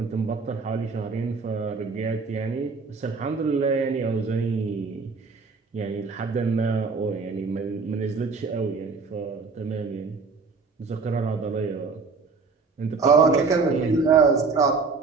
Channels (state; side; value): quieter; left; 4.6 dB